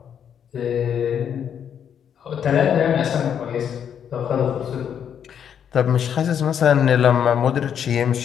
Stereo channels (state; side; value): quieter; right; 8.5 dB